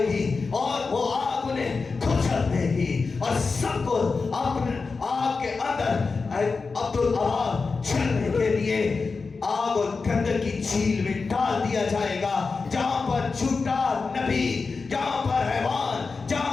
और वो आग उन्हें कुचल देगी और सबको अपने आग के अंदर अब्दुल अबाद चलने के लिए आग और गंदल की झील में डाल दिया जाएगा, जहां पर झूठा नबी, जहां पर हैवान,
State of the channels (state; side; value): quieter; right; 4.5 dB